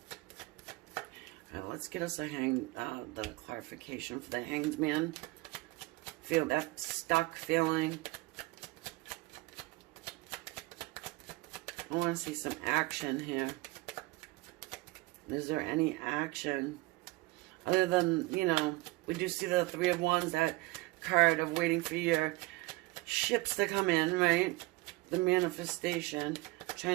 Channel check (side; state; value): left; quieter; 21.4 dB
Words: let's get us the clarification for the Hanged Man. Feel that stuck feeling. I want to see some action here. Is there any action? Other than, you know, we do see the Three of Wands, that card of waiting for your ships to come in, right? The manifestation,